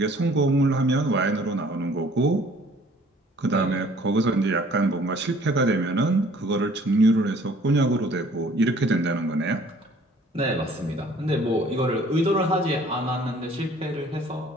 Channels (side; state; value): both; normal; correlation 0.55